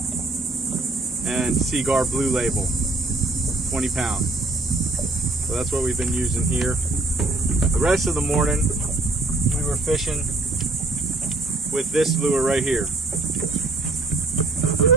and Seaguar Blue Label, 20 pound. So that's what we've been using here. The rest of the morning we were fishing with this lure right here.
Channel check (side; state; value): left; quieter; 3.0 dB